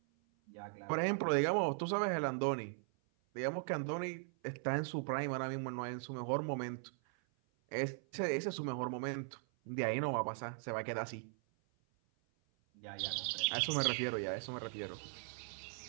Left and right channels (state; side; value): silent; left; 52 dB below the other